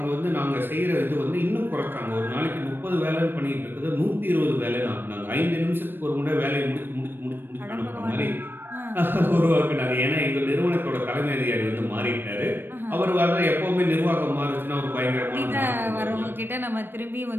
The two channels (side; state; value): left; late; 0.097 ms